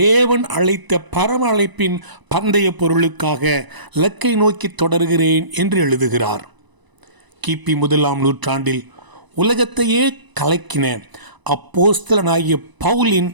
அழைத்த பரம அழைப்பின் பந்தய பொருளுக்காக இலக்கை நோக்கி தொடர்கிறேன் என்று எழுதுகிறார். கிபி 1ஆம் நூற்றாண்டில் உலகத்தையே கலக்கின அப்போஸ்தலனாகிய பவுலின்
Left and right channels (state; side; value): late; left; 1.0 ms